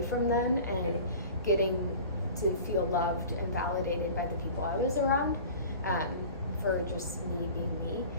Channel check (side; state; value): both; inverted; correlation -0.41